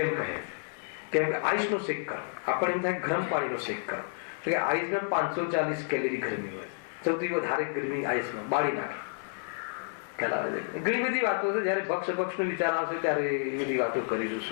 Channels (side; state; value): right; silent; digital silence